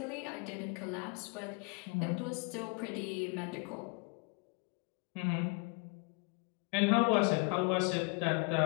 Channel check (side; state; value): right; quieter; 31.8 dB